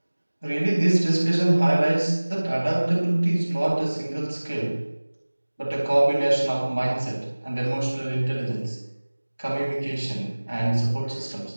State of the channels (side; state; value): both; inverted; correlation -1.00